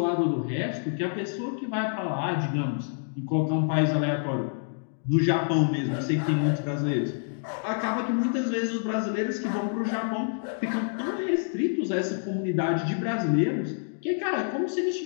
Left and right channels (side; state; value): right; silent; digital silence